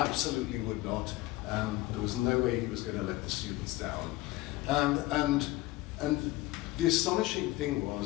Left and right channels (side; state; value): right; quieter; 18.5 dB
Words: would not. There was no way he was going to let the students down. And the astonishing thing